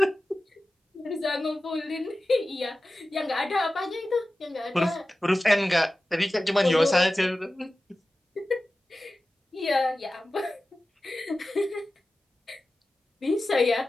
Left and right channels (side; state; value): both; normal; correlation 0.95